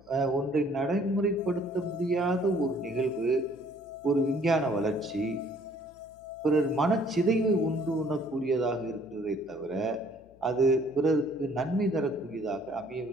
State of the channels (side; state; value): left; noise; hum, 28 dB below the sound